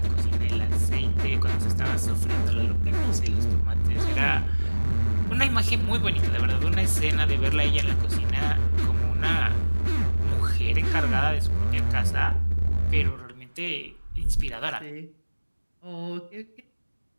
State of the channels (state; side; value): inverted; both; correlation -1.00